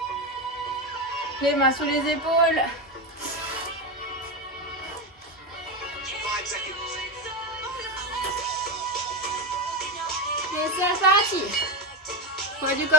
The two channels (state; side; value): normal; both; correlation 0.14